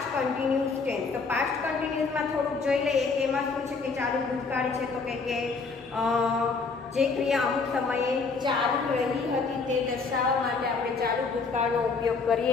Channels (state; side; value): quieter; right; 4.5 dB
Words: કન્ટિન્યુઅસ ટેન્સ. તો પાસ્ટ કન્ટિન્યુઅસમાં થોડુંક જોઈ લઈએ કે એમાં શું છે કે ચાલુ ભૂતકાળ છે. તો કે જે ક્રિયા અમુક સમયે ચાલુ રહી હતી તે દર્શાવવા માટે આપણે ચાલુ ભૂતકાળનો ઉપયોગ